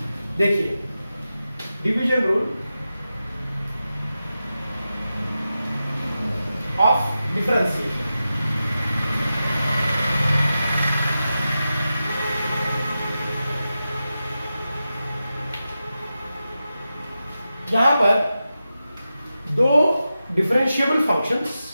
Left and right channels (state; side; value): inverted; both; correlation -0.91